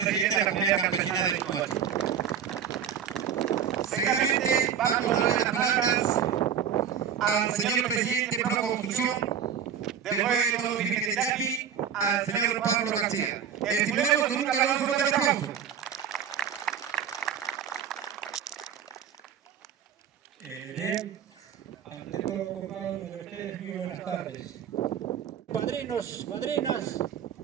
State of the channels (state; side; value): quieter; left; 8.2 dB